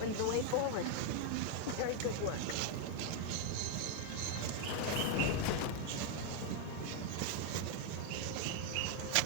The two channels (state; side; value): different; both; correlation 0.01